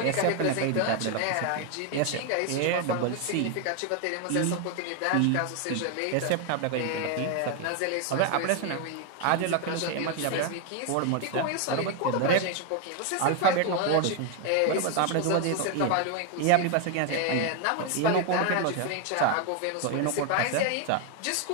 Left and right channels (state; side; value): different; both; correlation 0.01